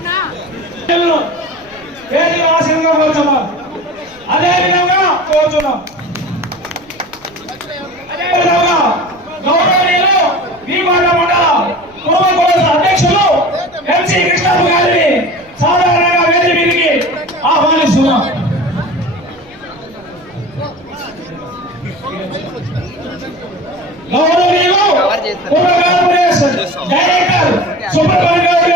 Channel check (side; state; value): right; noise; rumble, 29 dB below the sound